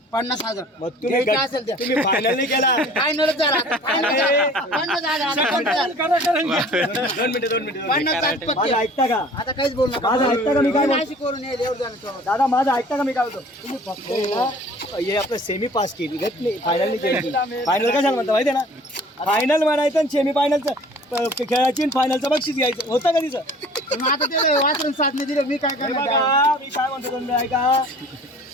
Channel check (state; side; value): normal; both; correlation 0.49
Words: 50,000. मग तुम्ही द्यायचं असेल द्या. तुम्ही फायनल नाही केला. फायनलच झाला. फायनल झाला. 50,000. आता 50,000. 2 मिनिटं 50,000 पक्के. माझं ऐकता का? आता काहीच बोल नका. माझं ऐकता का मी काय बोलतो? नाशिक करून येईल एवढं झालं तेव्हा. दादा माझं ऐकता का मी काय बोलतो? तुम्ही फक्त आहे ना, हे आपलं सेमी पास केली घेत नाही फायनल नाही केली. फायनल कशाला म्हणता माहिती आहे ना? फायनल म्हणायचं आणि सेमी फायनलचं खेळाची फायनलचं बक्षीस घ्यायचं होतं का तिचं? मग आता ते वाचून साधने दिले मी काय हे करणार. बघा, मी काय म्हणतो तुम्ही ऐका.